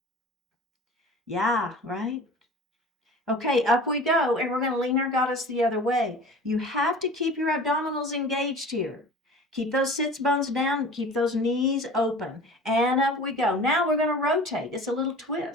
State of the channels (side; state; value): both; normal; correlation 0.40